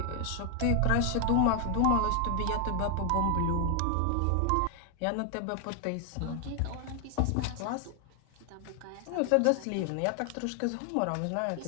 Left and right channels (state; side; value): different; both; correlation 0.00